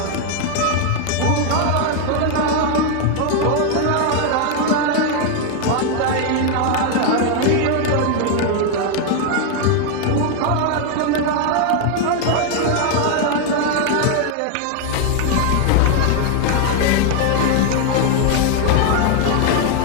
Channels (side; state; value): both; different; correlation 0.01